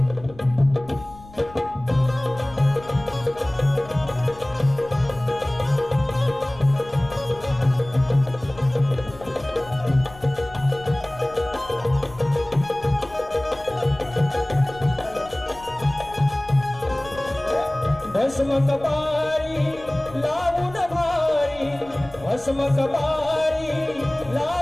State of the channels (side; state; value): left; noise; rumble, 20 dB below the sound